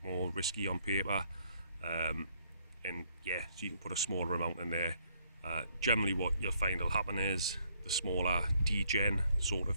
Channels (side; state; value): both; inverted; correlation -0.68